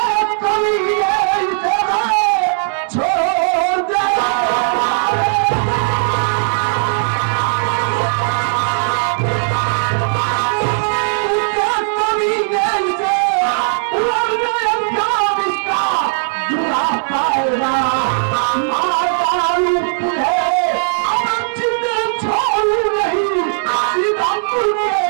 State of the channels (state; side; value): silent; left; 62 dB below the other